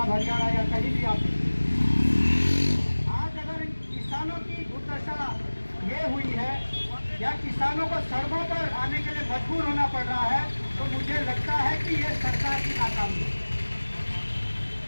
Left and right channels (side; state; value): both; inverted; correlation -1.00